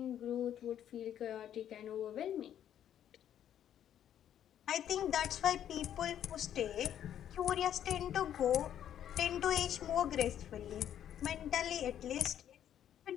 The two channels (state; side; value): quieter; right; 10.3 dB